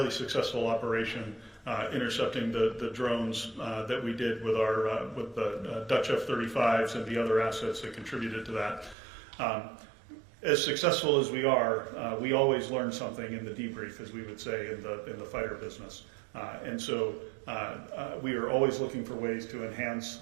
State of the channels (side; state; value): left; drops out; at 9.0 s